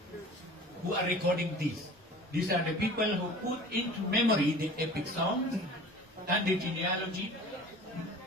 who are recording these. These are the people who put into memory the epic songs and the genealogy,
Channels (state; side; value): normal; both; correlation 0.43